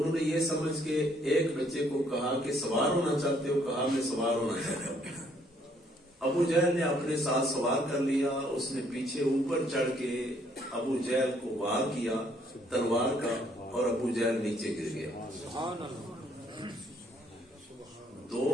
نے یہ سمجھ کے ایک بچے کو کہا کہ سوار ہونا چاہتے ہو؟ کہا میں سوار ہونا چاہتا ہوں۔ ابو جہل نے اپنے ساتھ سوار کر لیا، اس نے پیچھے اوپر چڑھ کے ابو جہل کو وار کیا تلوار کا، اور ابو جہل نیچے گر گیا۔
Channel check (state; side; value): normal; both; correlation 0.66